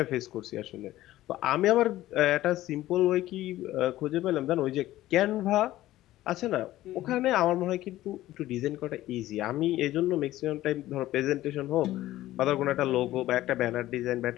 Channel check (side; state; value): right; quieter; 15.3 dB